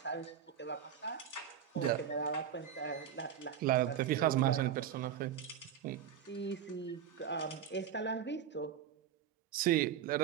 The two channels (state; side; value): quieter; left; 9.1 dB